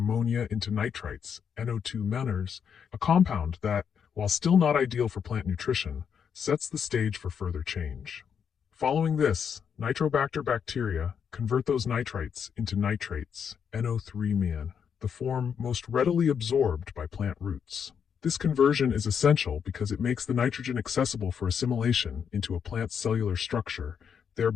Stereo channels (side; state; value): right; quieter; 7.3 dB